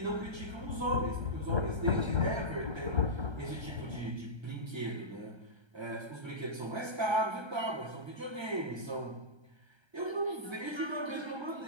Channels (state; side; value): late; left; 1.3 ms